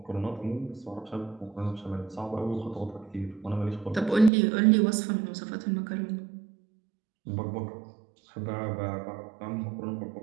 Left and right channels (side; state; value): left; drops out; at 4.3 s